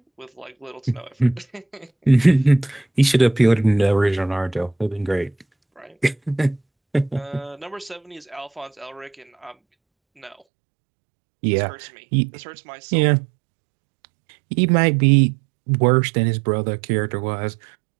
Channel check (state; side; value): drops out; left; at 10.4 s